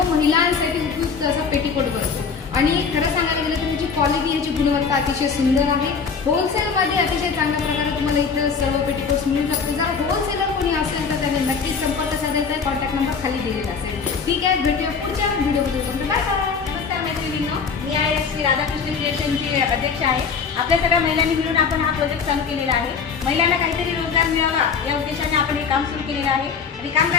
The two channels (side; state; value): right; quieter; 5.7 dB